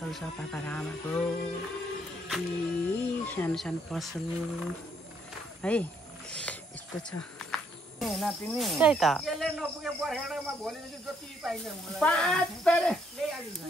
छ पापा र आमाको। सानो सानो पसल है, यस्तो छ। त्यही त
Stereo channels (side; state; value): both; normal; correlation 0.70